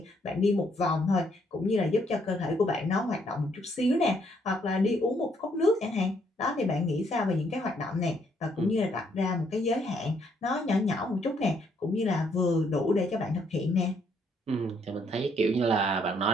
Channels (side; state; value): both; normal; correlation 0.70